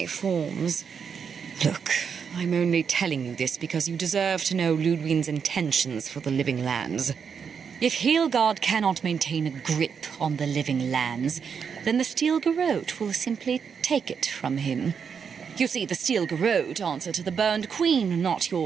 forms. Look, I'm only telling you this because you deserve to know Ludwig's intentions for the living lands. If Heelgard cannot maintain a grip on the living lands, then the Steel Garrote will simply take it from him. You see, the Steel Garrote answer to the Burned Queen, not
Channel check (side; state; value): left; quieter; 6.6 dB